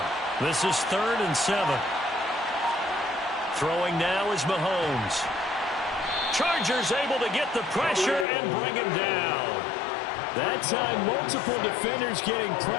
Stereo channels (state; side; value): drops out; right; at 8.2 s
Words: This is 3rd and 7. Throwing now is Mahomes. Chargers able to get the pressure and bring him down. That time, multiple defenders getting